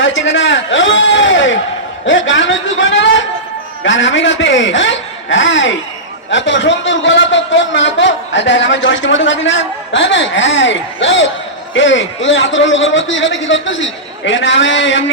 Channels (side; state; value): both; normal; correlation -0.15